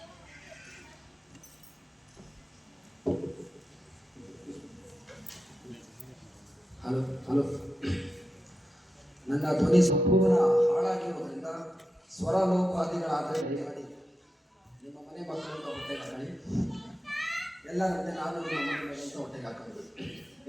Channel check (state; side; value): normal; both; correlation 0.89